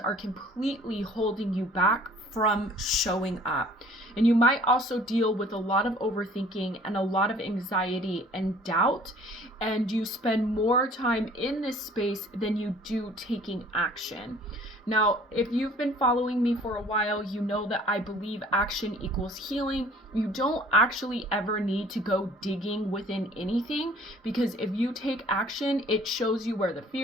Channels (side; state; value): both; normal; correlation 0.53